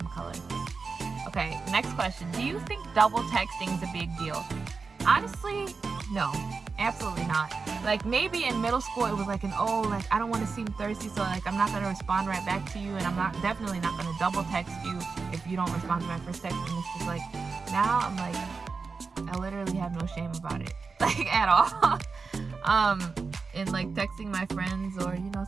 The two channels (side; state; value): left; quieter; 4.6 dB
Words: color. Okay, next question. Do you think double texting is a big deal? Honestly, no, absolutely not. Like maybe in middle school it was like like I don't want to seem thirsty, so like I'm not gonna respond right back to you, and I'm definitely not gonna double text you if you don't respond to my first text. And it's just like now I'm like I literally have no shame about it, like at all. And like texting my friends or